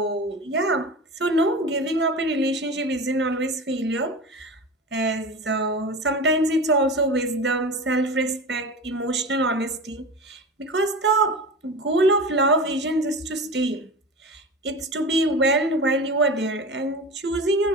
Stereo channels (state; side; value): normal; both; correlation 0.30